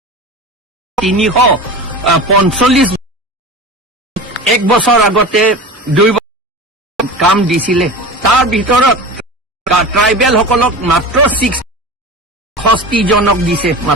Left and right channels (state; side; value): normal; both; correlation 0.32